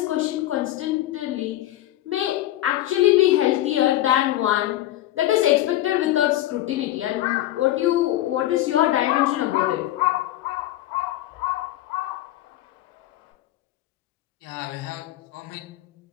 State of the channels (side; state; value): right; quieter; 14.7 dB